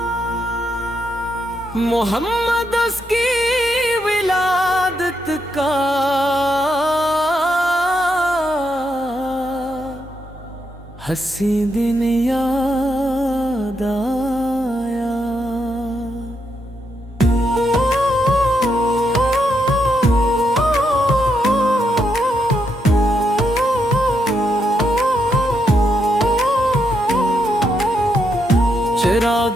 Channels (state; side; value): normal; both; correlation 0.80